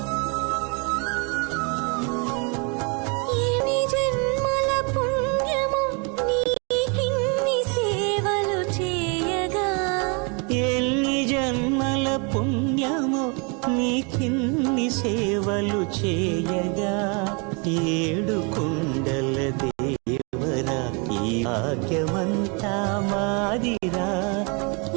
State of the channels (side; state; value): left; quieter; 33.8 dB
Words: ఎన్ని జన్మల పుణ్యము నీకిన్ని సేవలు చేయగా ఎన్ని జన్మల పుణ్యము నీకిన్ని సేవలు చేయగా ఏడు కుండల దేవరా ఈ భాగ్యమంతా మాదిరా